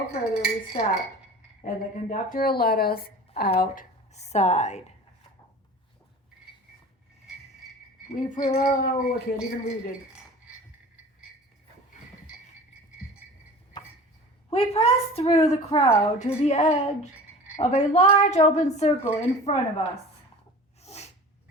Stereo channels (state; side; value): normal; both; correlation 0.39